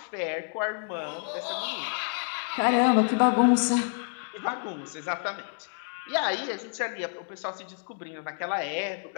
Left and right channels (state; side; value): silent; right; 56 dB below the other